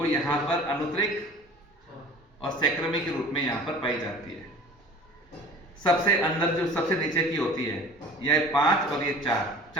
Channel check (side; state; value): both; normal; correlation 0.43